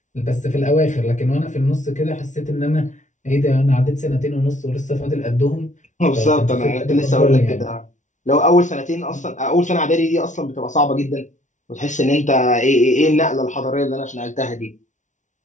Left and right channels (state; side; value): late; right; 0.36 ms